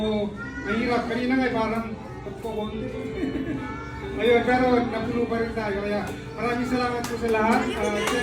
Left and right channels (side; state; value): both; identical; correlation 1.00